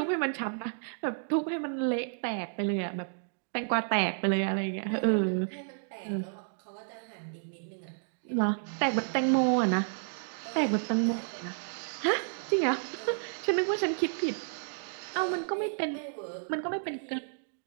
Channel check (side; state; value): left; silent; digital silence